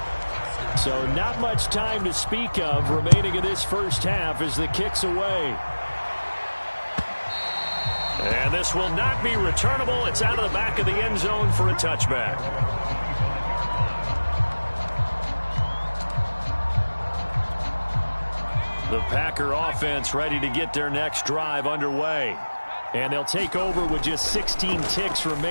So not much time to speak of remaining in this first half as the kick's away. And this will not be returnable. It's out of the back of the end zone for a touchback. The Packer offense ready to get their next drive underway. And they'll take over with just 16 ticks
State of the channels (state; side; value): inverted; both; correlation -1.00